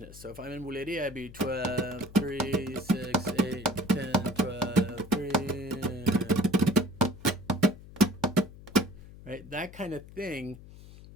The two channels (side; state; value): left; noise; hum, 18 dB below the sound